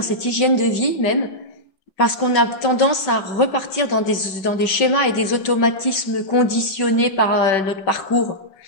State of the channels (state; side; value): late; right; 5.2 ms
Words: cette hygiène de vie même, parce qu'on a tendance à repartir dans des schémas et des automatismes conditionnés par notre parcours.